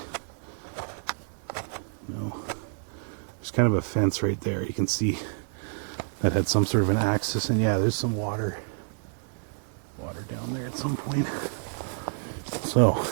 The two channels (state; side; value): silent; left; digital silence